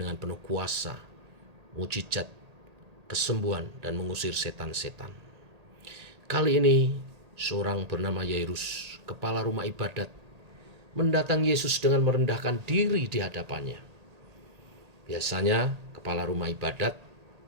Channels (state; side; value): late; left; 1.8 ms